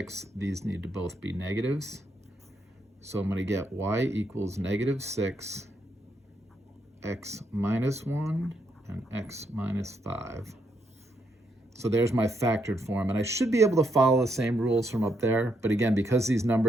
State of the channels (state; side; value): normal; both; correlation 0.78